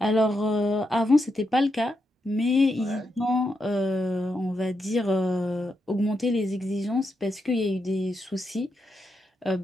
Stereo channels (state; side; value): normal; both; correlation 0.83